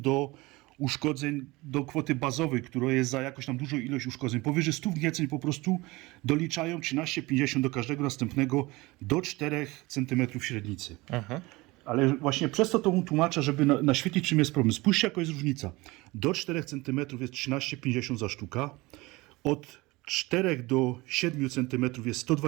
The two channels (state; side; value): quieter; left; 22.1 dB